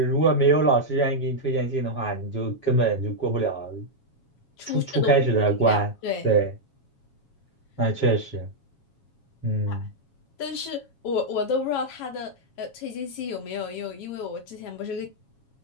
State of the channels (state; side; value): late; right; 7.3 ms